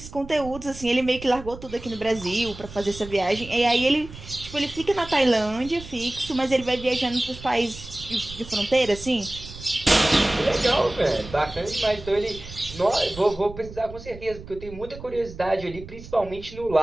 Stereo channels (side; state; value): right; noise; rumble, 15 dB below the sound